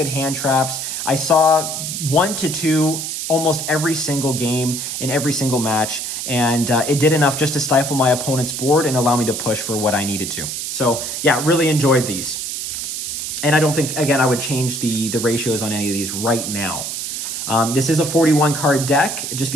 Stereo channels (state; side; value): noise; right; hiss, 4 dB below the sound